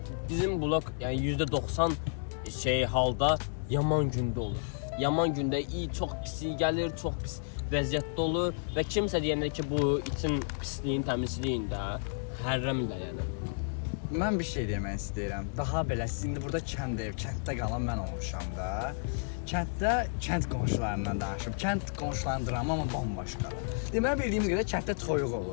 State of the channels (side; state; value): right; silent; digital silence